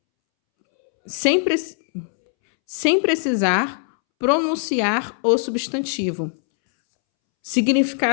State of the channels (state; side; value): silent; right; 65 dB below the other